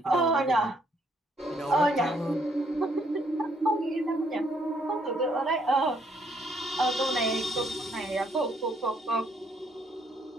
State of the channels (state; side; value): normal; both; correlation 0.69